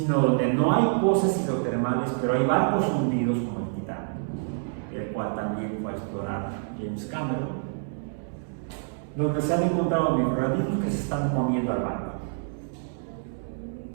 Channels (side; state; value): left; silent; 60 dB below the other